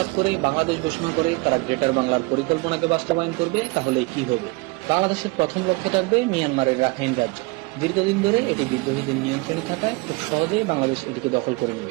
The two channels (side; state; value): left; quieter; 25.8 dB